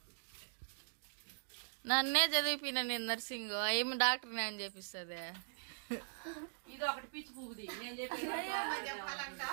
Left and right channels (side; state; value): left; silent; digital silence